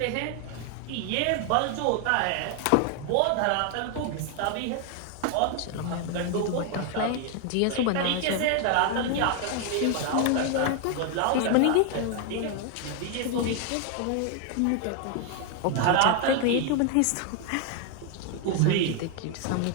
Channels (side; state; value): both; different; correlation 0.00